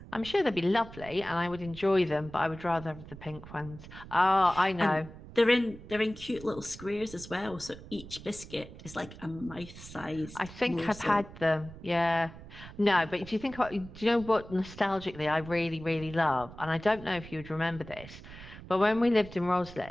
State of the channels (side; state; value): right; noise; rumble, 16 dB below the sound